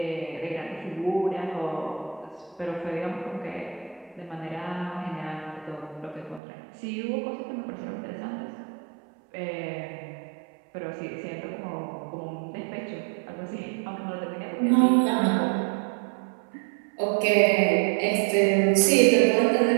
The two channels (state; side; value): drops out; left; at 6.4 s